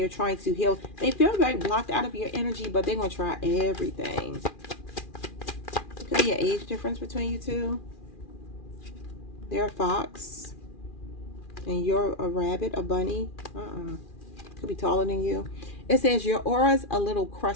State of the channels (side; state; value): right; late; 2.4 ms